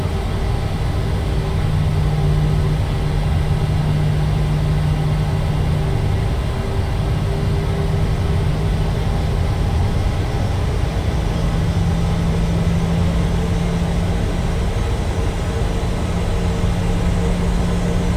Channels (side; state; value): both; identical; correlation 1.00